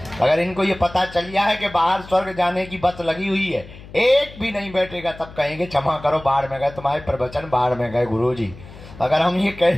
अगर इनको ये पता चल गया है कि बाहर स्वर्ग जाने की बस लगी हुई है, एक भी नहीं बैठेगा, तब कहेंगे क्षमा करो, बाहर में गए, तुम्हारे प्रवचन बाहर में गए गुरुजी। अगर हम ये कह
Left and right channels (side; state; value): left; noise; hum, 18 dB below the sound